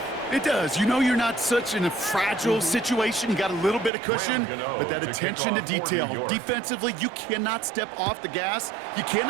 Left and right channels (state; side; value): drops out; left; at 3.9 s